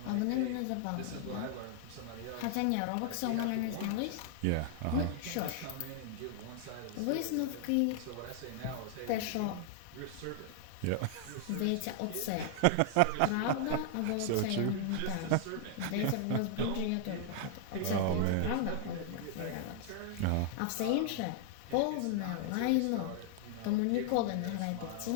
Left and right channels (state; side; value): different; both; correlation 0.00